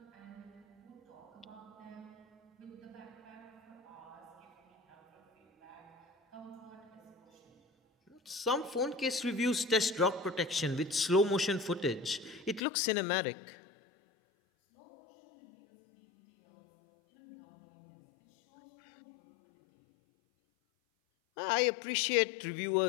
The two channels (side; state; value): right; drops out; at 12.6 s